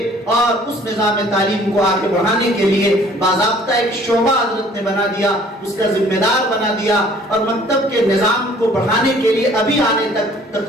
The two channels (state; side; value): normal; both; correlation 0.55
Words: اور اس نظام تعلیم کو آگے بڑھانے کے لیے باضابطہ ایک شعبہ حضرت نے بنا دیا, اس کا ذمہ دار بنا دیا. اور مکتب کے نظام کو بڑھانے کے لیے ابھی آنے تک